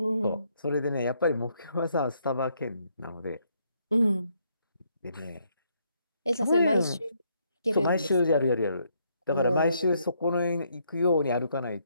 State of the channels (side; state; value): both; inverted; correlation -0.73